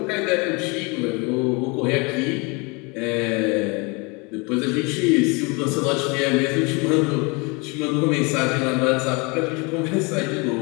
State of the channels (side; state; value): right; quieter; 29.1 dB